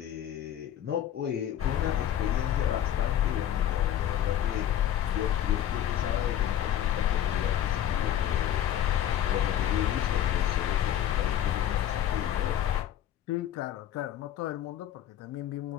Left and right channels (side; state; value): right; quieter; 11.1 dB